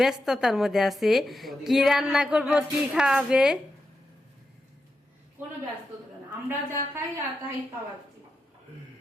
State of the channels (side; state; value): both; normal; correlation 0.87